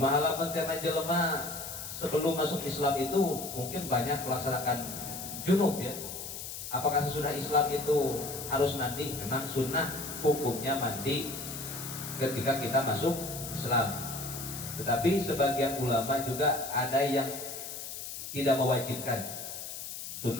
lamun teh jelema sebelum masuk Islam itu mungkin banyak melaksanakan junub ya. Apakah sesudah Islam itu harus mandi? Memang sunnah hukumnya mandi ketika kita masuk Islam. Tetapi sebagian ulama juga ada yang tidak mewajibkan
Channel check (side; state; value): left; noise; hiss, 8 dB below the sound